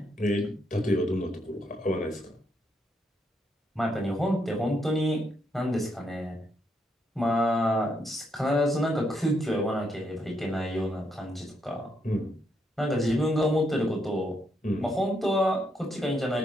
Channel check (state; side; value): normal; both; correlation 0.77